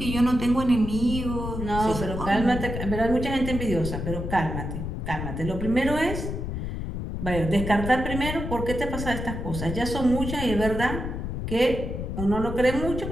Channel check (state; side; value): noise; left; rumble, 5 dB below the sound